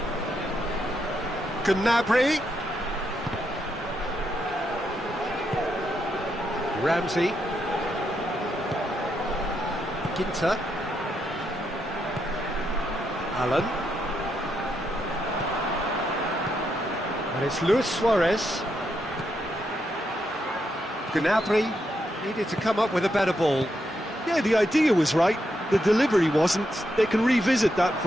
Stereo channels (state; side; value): normal; both; correlation 0.81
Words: Gnabry. Ramsey. Ginter. Allen. And it's Luis Suarez. Gnabry needed to come up with a better ball. Yeah, the idea was right, the delivery wasn't. They can revisit that